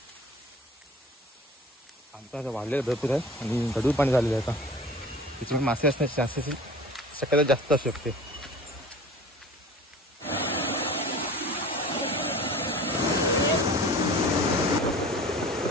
आमचा आता वाढलेलं भरपूर आहे आणि गढूळ पाणी झालेलं आहे. आता तिथे मासे असण्याची चान्सेस शक्यता जास्त असू शकते.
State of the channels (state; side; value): normal; both; correlation 0.41